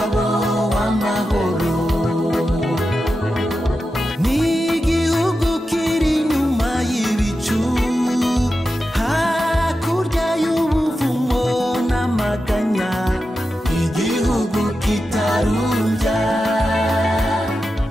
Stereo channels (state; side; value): normal; both; correlation 0.90